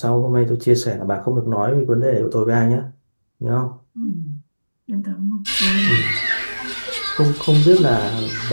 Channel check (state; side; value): inverted; both; correlation -1.00